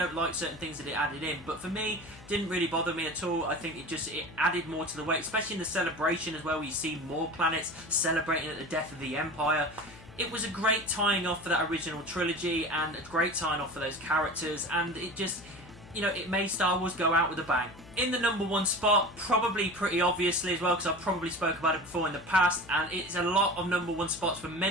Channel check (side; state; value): left; noise; hum, 19 dB below the sound